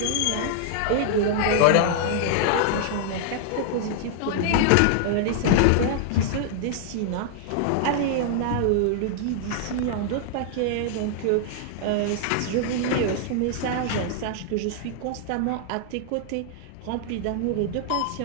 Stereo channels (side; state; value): both; different; correlation -0.01